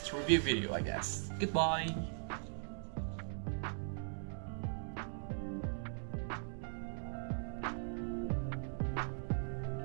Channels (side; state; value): left; silent; digital silence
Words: review video, I guess. Goodbye.